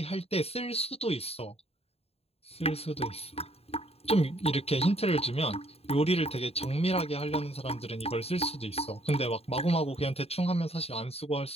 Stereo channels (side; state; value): right; late; 0.29 ms